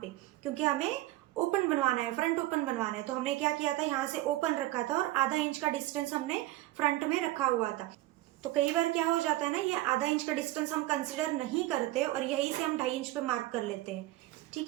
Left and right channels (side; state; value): left; quieter; 17.0 dB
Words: पे, क्योंकि हमें ओपन बनवाना है, फ्रंट ओपन बनवाना है। तो हमने क्या किया था, यहाँ से ओपन रखा था और 1/2 इंच का डिस्टेंस हमने फ्रंट में रखा हुआ था। तो कई बार क्या हो जाता है ना, ये 1/2 इंच का डिस्टेंस हम कंसिडर नहीं करते और यही से हम 2.5 इंच पे मार्क कर लेते हैं, ठीक